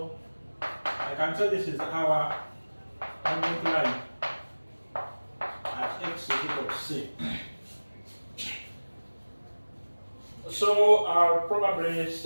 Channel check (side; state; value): both; inverted; correlation -1.00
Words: I can say this is our tangent line at x is equal to C. So I'll probably